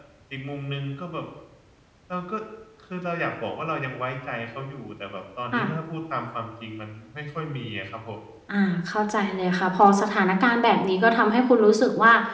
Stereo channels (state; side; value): identical; both; correlation 1.00